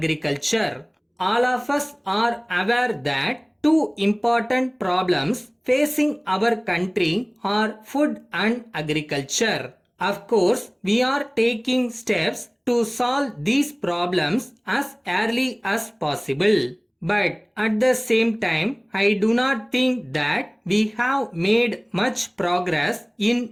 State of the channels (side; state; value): both; identical; correlation 1.00